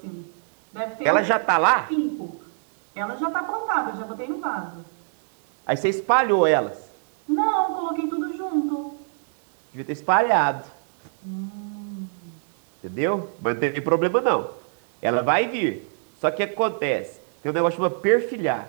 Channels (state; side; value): silent; left; digital silence